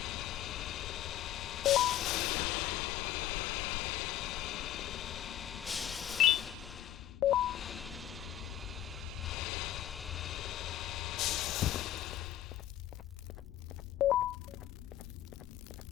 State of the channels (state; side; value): quieter; right; 12.5 dB